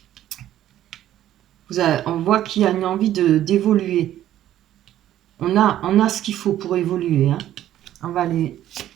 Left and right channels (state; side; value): quieter; left; 12.4 dB